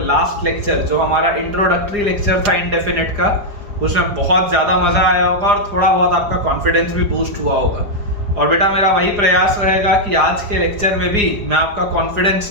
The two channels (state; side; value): late; left; 4.9 ms